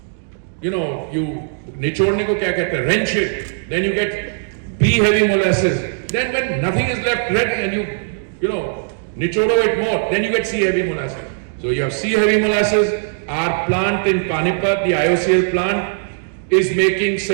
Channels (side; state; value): left; silent; digital silence